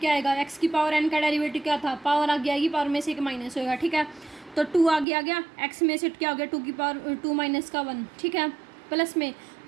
आएगा, एक्स की पावर एन का डेरिवेटिव क्या था, पावर आगे आएगी, पावर में से एक माइनस होगा, ठीक है। तो 2 आगे आ गया, एक्स में से क्या हो गया, 2 की पावर 2 माइनस का 1, ठीक है। प्लस में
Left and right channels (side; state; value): left; drops out; at 5.1 s